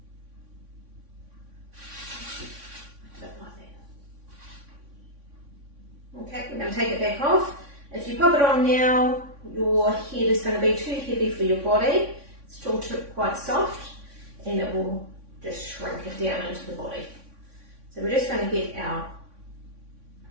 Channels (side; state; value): left; late; 3.6 ms